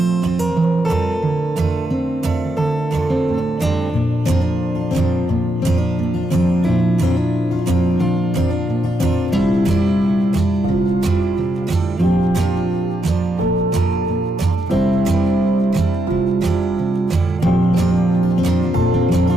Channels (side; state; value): both; normal; correlation 0.81